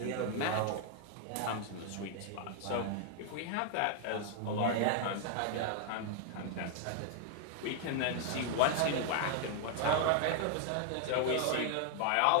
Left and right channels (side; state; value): both; different; correlation 0.00